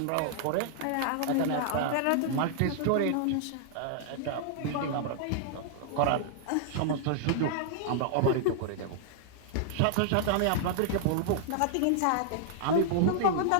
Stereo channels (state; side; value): different; both; correlation -0.01